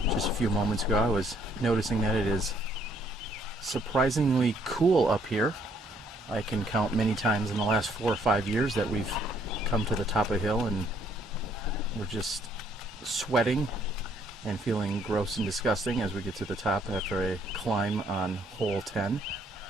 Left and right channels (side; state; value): both; normal; correlation 0.66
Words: Just a few moments ago I was noticing that it is surprisingly cool up here. I can count many times in the last 4 or 5 years that we've come to the top of the hill and we're just sweating and feeling gross and disgusting as we get to the top after a climb on hole 10.